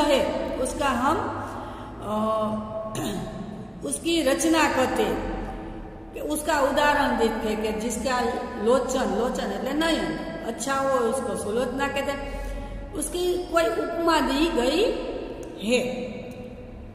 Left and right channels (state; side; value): identical; both; correlation 1.00